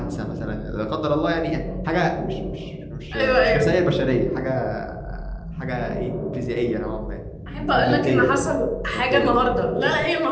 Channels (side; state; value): both; identical; correlation 1.00